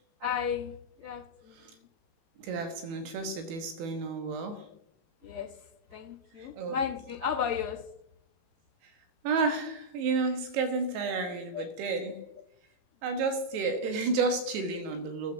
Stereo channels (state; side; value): late; left; 18 ms